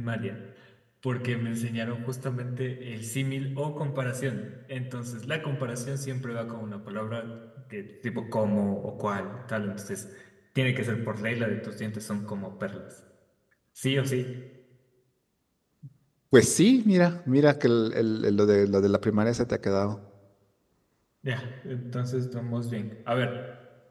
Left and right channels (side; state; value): both; identical; correlation 1.00